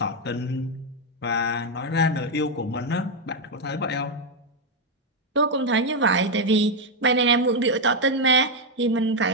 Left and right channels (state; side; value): normal; both; correlation 0.02